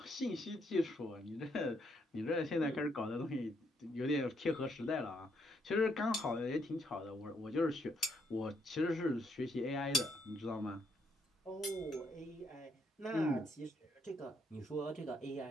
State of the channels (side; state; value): both; normal; correlation 0.73